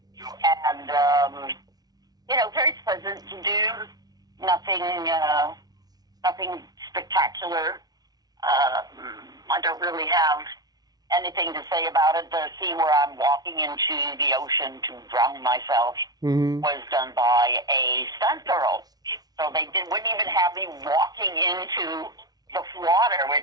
and you know, very pleasant to do. Nothing spectacular. I don't really have anything to say about it. The scene where I'm walking into the ocean to drown myself was done by a stunt girl. So wouldn't even have me walking into the water,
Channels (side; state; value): left; late; 0.19 ms